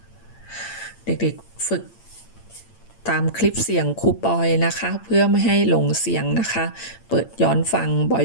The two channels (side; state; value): right; late; 8.8 ms